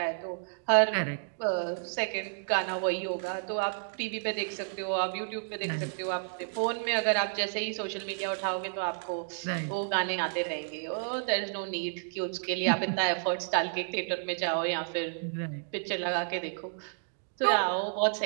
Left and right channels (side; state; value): left; silent; digital silence